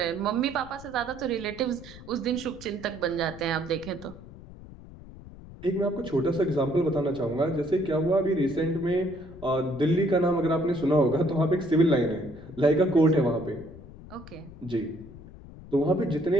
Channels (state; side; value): noise; left; rumble, 17 dB below the sound